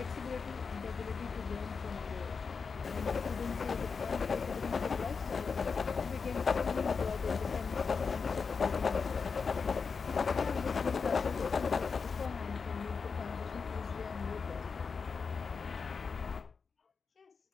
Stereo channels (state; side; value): quieter; right; 5.3 dB